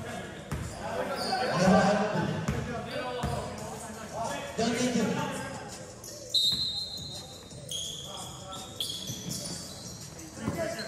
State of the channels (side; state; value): both; identical; correlation 1.00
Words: Don't need to.